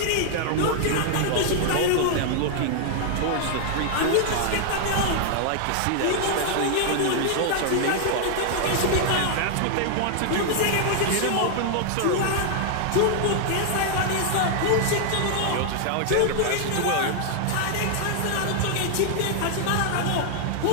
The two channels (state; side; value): different; both; correlation 0.00